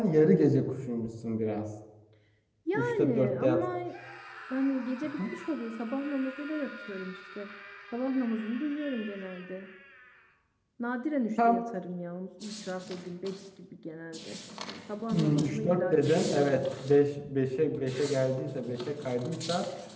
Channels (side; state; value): both; identical; correlation 1.00